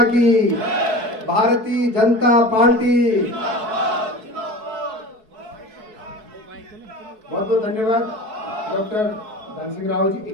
की, भारतीय जनता पार्टी। बहुत बहुत धन्यवाद डॉक्टर धन सिंह रावत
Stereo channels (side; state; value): left; late; 4.6 ms